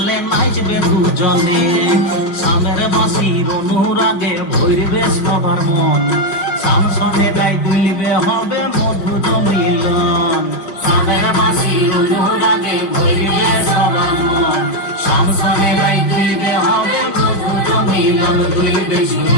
নাচবে দুজনে সামের বাঁশির অনুরাগে ভরবে সবার মন শামসনে গাই দুলবে হবে মধুর মিলন সামের বাঁশির অনুরাগে ভরবে সবার মন শামসনে গাই দুলবে হবে মিলন দুলবে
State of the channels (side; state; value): right; late; 5.1 ms